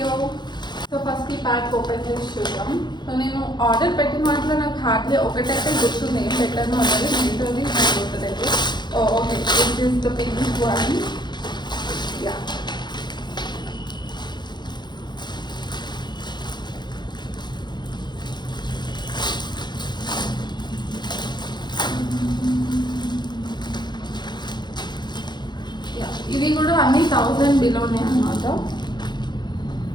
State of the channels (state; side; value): late; right; 0.21 ms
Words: సో ఫస్ట్ ఈ ప్యాక్ ఓపెన్ చేసి చూద్దాం. సో నేను ఆర్డర్ పెట్టిన వాటిలో నాకు హార్డ్లీ ఒకటైతే గుర్తుంది, ఏం పెట్టాను అన్నది. మిగతాది నాకు గుర్తులేదు. Okay, this is the pink one. Yeah, ఇవి కూడా అన్ని 1000 బిలోనే అన్నమాట.